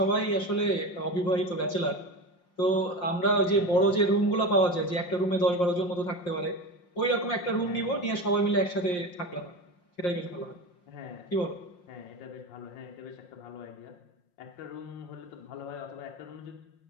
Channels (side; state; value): right; late; 5.7 ms